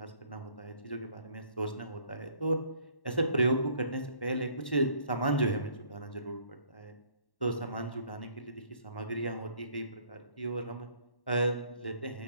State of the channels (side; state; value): right; late; 1.1 ms